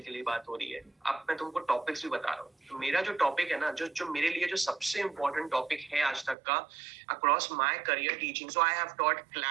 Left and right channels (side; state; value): left; drops out; at 6.4 s